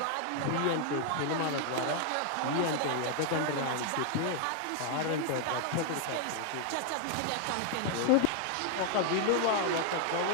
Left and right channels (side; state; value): both; different; correlation 0.00